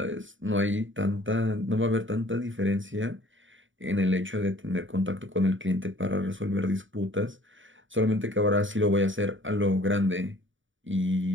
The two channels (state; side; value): late; left; 0.56 ms